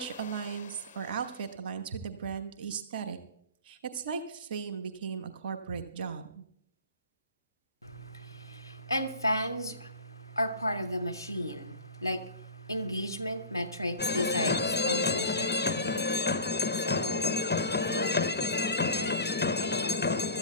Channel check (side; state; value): both; inverted; correlation -0.37